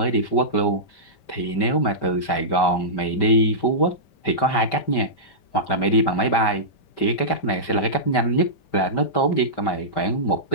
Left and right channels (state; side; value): late; right; 5.1 ms